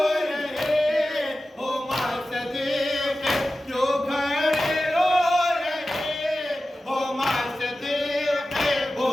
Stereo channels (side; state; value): both; normal; correlation 0.94